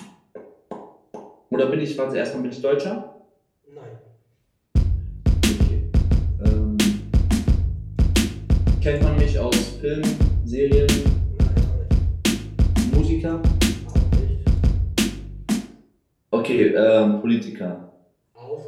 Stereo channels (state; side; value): identical; both; correlation 1.00